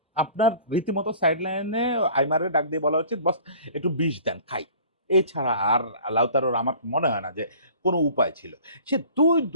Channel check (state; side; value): inverted; both; correlation -0.47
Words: আপনার রীতিমতো সাইড লাইনে আইমারে ডাক দিয়ে বলা উচিত, বস একটু বিষ দেন খাই। এছাড়া আর লাউতারোর আমার মনে হয় না যে কোনো উপায় ছিল। সে